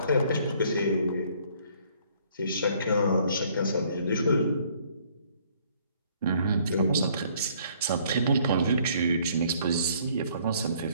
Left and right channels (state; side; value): inverted; both; correlation -0.62